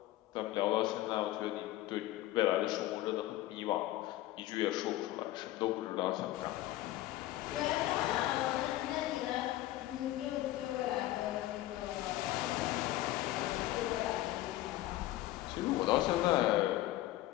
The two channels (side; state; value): right; quieter; 15.8 dB